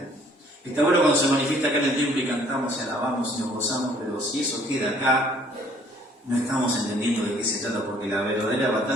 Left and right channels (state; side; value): normal; both; correlation 0.59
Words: Está bueno cuando se manifiesta acá en el templo y cantamos y alabamos y nos gozamos, pero si eso queda acá, no estamos entendiendo de qué se trata, porque la verdadera